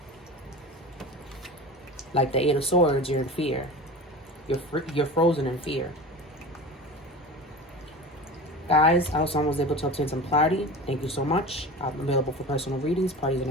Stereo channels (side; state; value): both; normal; correlation 0.33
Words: like the Eight of Swords, you're in fear. You're frozen in fear. Guys, I hope someone was able to obtain some clarity. Thank you so much. I'm available for personal readings, parties, and